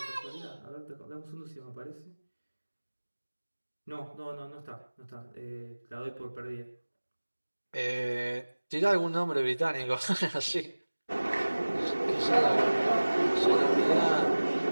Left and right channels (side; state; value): both; inverted; correlation -1.00